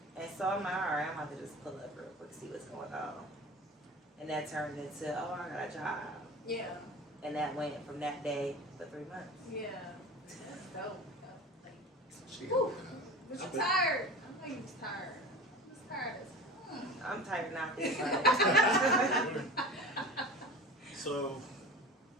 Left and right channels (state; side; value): normal; both; correlation 0.35